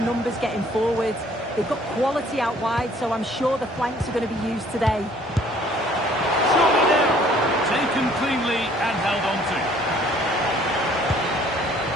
numbers getting forward. They've got quality out wide, so I'm sure the flanks are going to be used today. Surely now, taken cleanly and held on to.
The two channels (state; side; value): normal; both; correlation 0.58